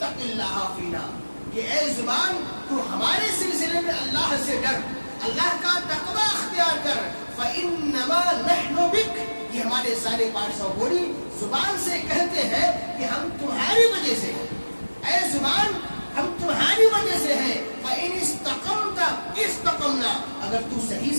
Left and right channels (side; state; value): both; inverted; correlation -1.00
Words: اللہ فینا, کہ اے زبان تو ہمارے سلسلے میں اللہ سے ڈر, اللہ کا تقوی اختیار کر. فإنما نحن بک, یہ ہمارے سارے پارٹس آف باڈی زبان سے کہتے ہیں کہ ہم تمہاری وجہ سے, اے زبان ہم تمہاری وجہ سے ہیں. فإن استقمت استقمنا, اگر تو صحیح